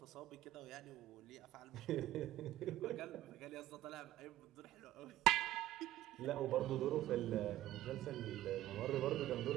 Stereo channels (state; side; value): quieter; left; 14.6 dB